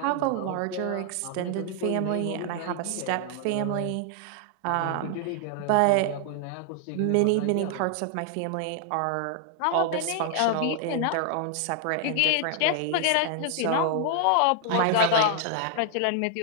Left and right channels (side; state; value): both; different; correlation 0.00